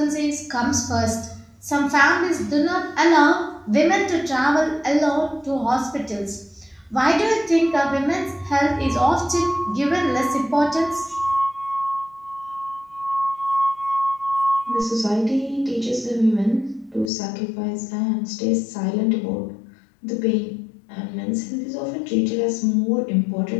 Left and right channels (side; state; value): right; drops out; at 17.1 s